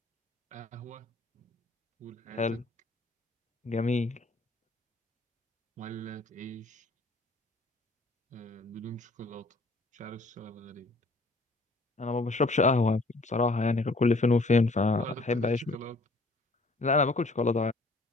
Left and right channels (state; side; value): quieter; right; 3.1 dB